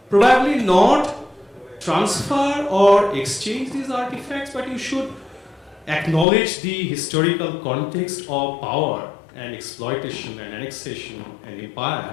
probably not transfer or exchange these artifacts, but you should acknowledge the historical context of power and exploitation and annexation and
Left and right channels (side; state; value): right; drops out; at 6.2 s